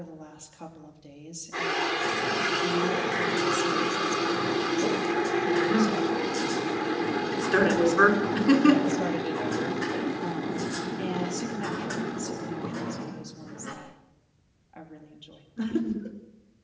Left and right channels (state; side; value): identical; both; correlation 1.00